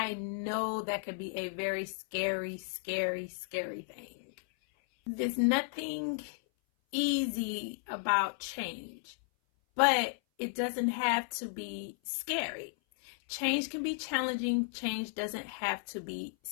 know that could be a very scary, scary, scary thing. There's nothing easy about change, but it doesn't have to be scary. Change can be challenging. Change doesn't have to be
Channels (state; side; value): silent; right; 55 dB below the other